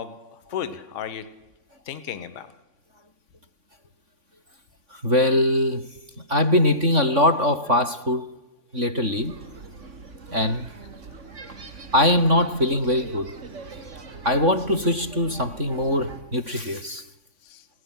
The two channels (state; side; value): late; left; 3.5 ms